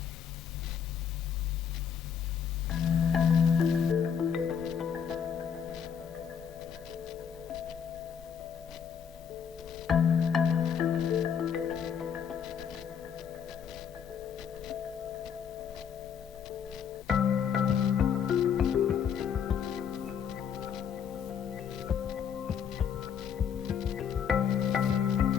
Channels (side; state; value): right; quieter; 7.6 dB